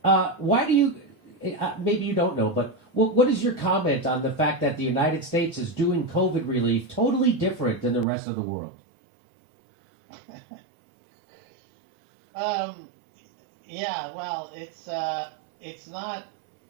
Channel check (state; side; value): drops out; left; at 8.1 s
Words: why do you, maybe you don't know, but What is your comment on the fact that the United States is doing COVID relief totally different than the rest of the world? Yeah, well, it's not.